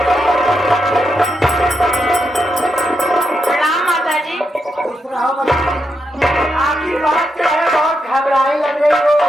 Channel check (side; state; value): both; normal; correlation 0.83